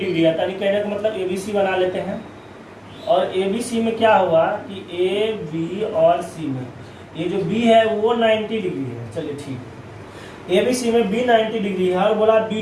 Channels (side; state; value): both; identical; correlation 1.00